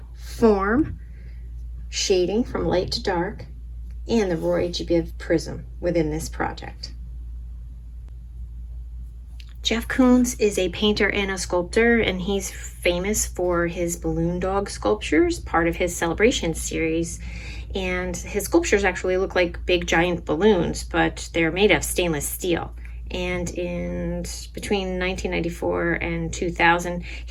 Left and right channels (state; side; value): identical; both; correlation 1.00